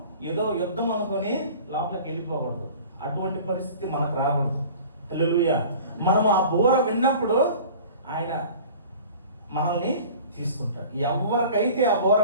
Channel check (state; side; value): inverted; both; correlation -0.43